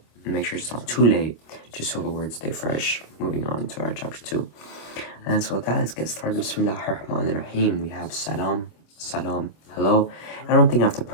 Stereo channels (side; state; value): right; late; 25 ms